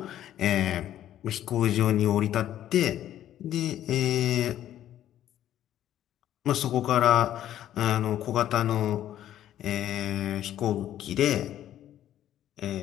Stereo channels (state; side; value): quieter; right; 11.9 dB